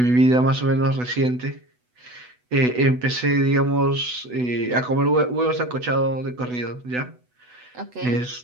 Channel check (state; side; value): late; left; 8.1 ms